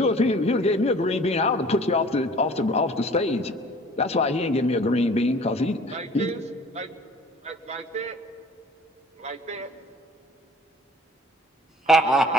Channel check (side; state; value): both; normal; correlation 0.50